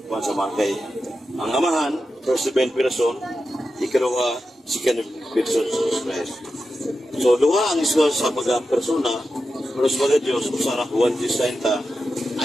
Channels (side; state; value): both; normal; correlation 0.90